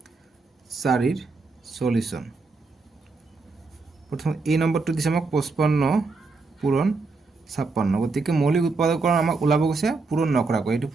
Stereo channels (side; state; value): left; quieter; 3.9 dB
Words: 4 ৰ সলিউশন প্ৰথম এই নম্বৰটো দিছে আমাক 55 পূৰণ 56 গতিকে মৌলিক উৎপাদকৰণ আমাক ওলাব গৈছে পূৰণ নকৰাকৈ এটো